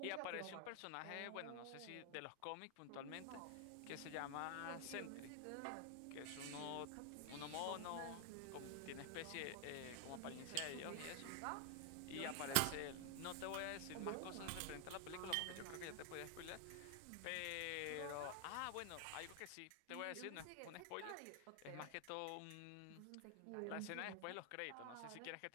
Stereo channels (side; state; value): both; different; correlation 0.00